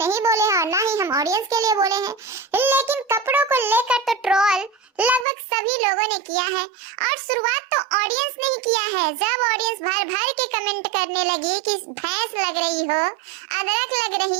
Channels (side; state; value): left; drops out; at 5.2 s